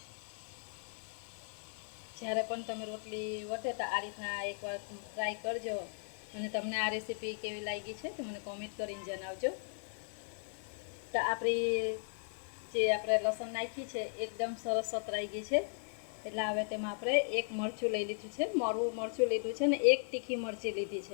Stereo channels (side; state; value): right; silent; digital silence